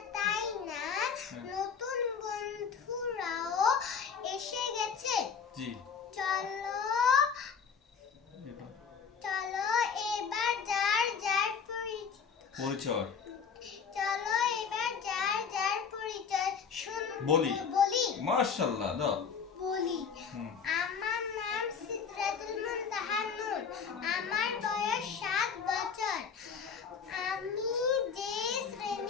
তাই না? নতুন বন্ধুরাও এসে গেছে। জি চলো এবার যার যার পরিচয় বলি। মাশাআল্লাহ দাও বলি। আমার নাম সিদরাতুল মুনতাহা নূর, আমার বয়স 7 বছর। আমি যে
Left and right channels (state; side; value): quieter; right; 6.4 dB